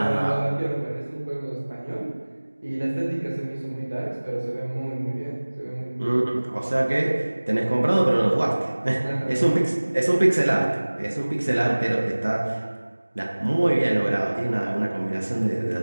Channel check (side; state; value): both; inverted; correlation -1.00